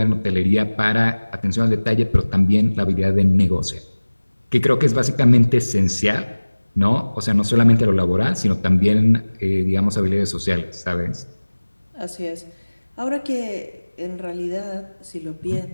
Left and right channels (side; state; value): both; inverted; correlation -1.00